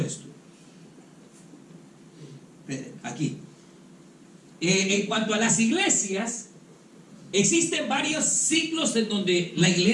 Aquí. En cuanto a las iglesias, existen varios ciclos en donde la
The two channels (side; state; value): both; identical; correlation 1.00